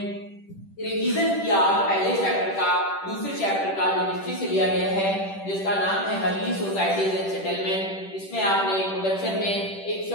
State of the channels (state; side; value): late; right; 10 ms